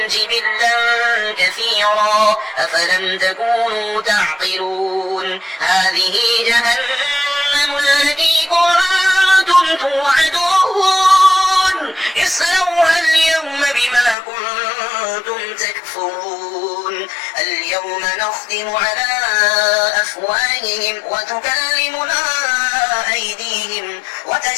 جبلا كثيرا أفلم تكونوا تعقلون هذه جهنم التي كنتم توعدون اصلوها اليوم بما كنتم تكفرون اليوم نختم على أفواههم وتكلمنا أيديهم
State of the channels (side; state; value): right; drops out; at 14.2 s